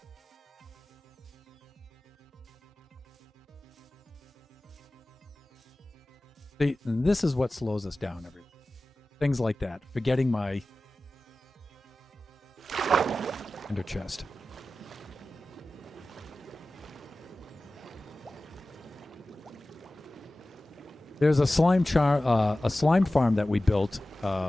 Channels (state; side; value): normal; both; correlation 0.96